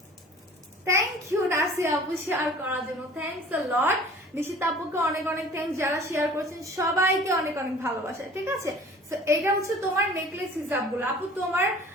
থ্যাংক ইউ নাসি আপু শেয়ার করার জন্য, থ্যাংকস আ লট। নিশিতা আপুকে অনেক অনেক থ্যাংকস, যারা শেয়ার করেছেন সবাইকে অনেক অনেক ভালোবাসা, ঠিক আছে? সো এটা হচ্ছে তোমার নেকলেস হিসাবগুলো আপু। তোমার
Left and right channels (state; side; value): normal; both; correlation 0.47